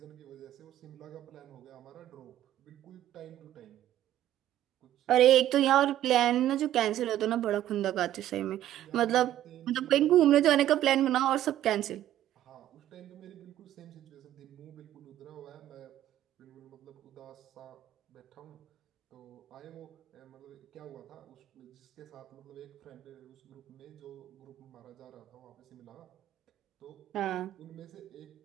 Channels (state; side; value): quieter; left; 12.6 dB